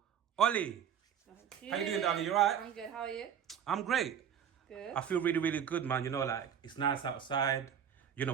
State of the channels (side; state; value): left; quieter; 8.7 dB